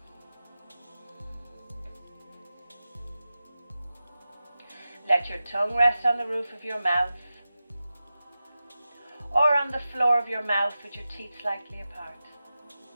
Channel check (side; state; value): both; inverted; correlation -0.94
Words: Let your tongue rest on the roof of your mouth or on the floor of your mouth with your teeth slightly apart.